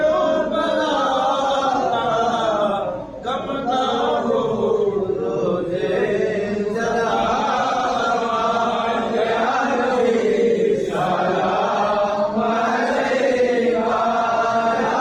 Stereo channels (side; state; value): both; identical; correlation 1.00